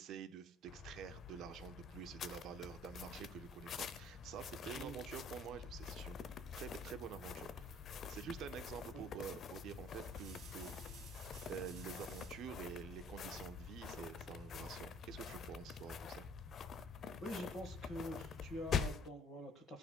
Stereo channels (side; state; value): both; normal; correlation 0.56